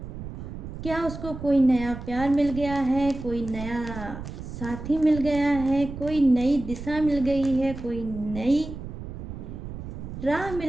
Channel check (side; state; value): right; noise; rumble, 9 dB below the sound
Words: क्या उसको कोई नया प्यार मिल गया है, कोई नया साथी मिल गया है, कोई नई दिशा मिल गई है, कोई नई राह